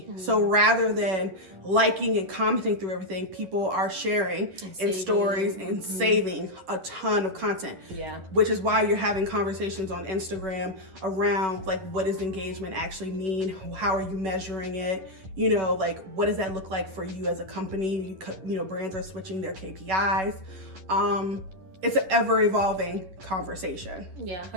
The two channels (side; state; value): left; late; 11 ms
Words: So rather than liking and commenting through everything, people are sharing in stories and saving a ton of content. Yeah. Which is why you're having conversations on Instagram around like, what does engagement actually mean? How are you measuring it? You know, like, what does that look like for you as a company? You know, brands are switching their KPIs. It's an ever evolving conversation. Yeah,